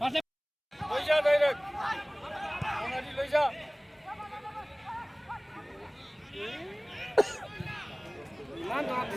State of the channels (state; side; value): identical; both; correlation 1.00